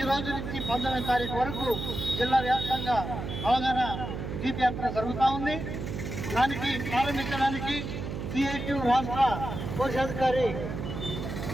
రోజు నుంచి 19వ తారీఖు వరకు జిల్లా వ్యాప్తంగా అవగాహన జీప్ యాత్ర జరుగుతూ ఉంది. దానికి ప్రారంభించడానికి సిఐటి రాష్ట్ర కోశాధికారి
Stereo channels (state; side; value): noise; right; hum, 5 dB below the sound